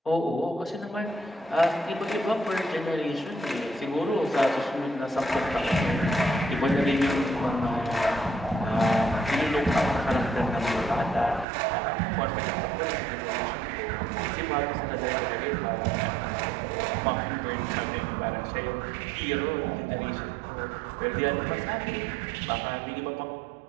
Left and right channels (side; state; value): left; drops out; at 11.5 s